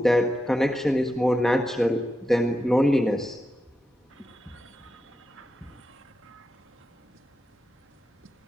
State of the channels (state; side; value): normal; both; correlation 0.88